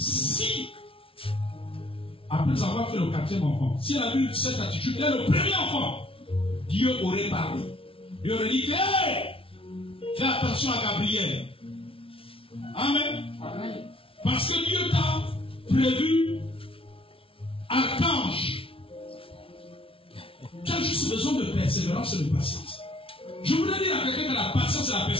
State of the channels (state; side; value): late; right; 0.26 ms